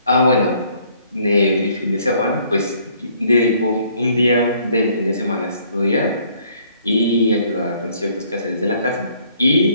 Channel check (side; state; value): both; inverted; correlation -0.63